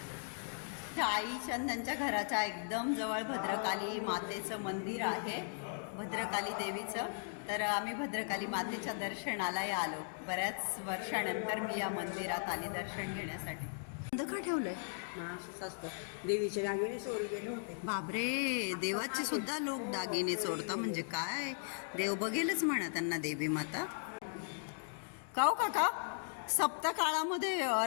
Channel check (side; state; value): right; silent; digital silence